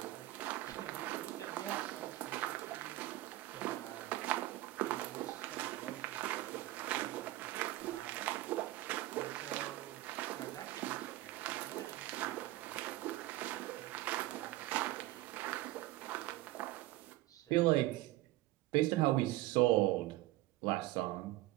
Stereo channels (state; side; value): quieter; left; 17.2 dB